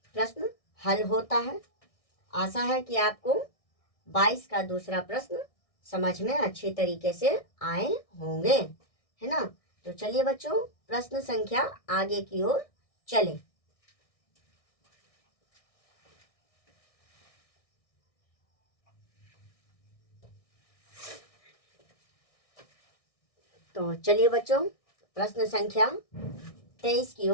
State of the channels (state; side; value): late; right; 1.6 ms